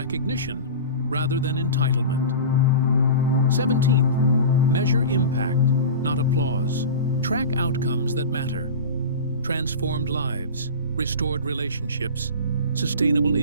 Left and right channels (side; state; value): both; inverted; correlation -0.31